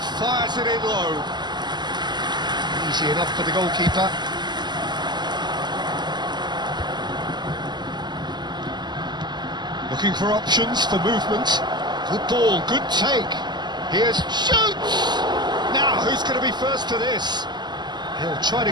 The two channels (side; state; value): left; late; 0.21 ms